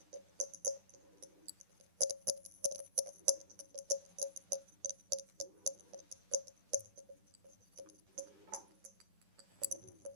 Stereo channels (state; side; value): late; left; 10 ms